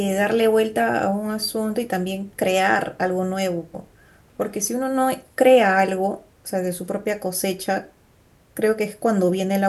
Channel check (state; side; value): identical; both; correlation 1.00